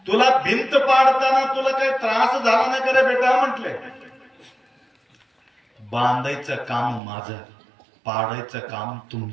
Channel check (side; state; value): left; drops out; at 7.0 s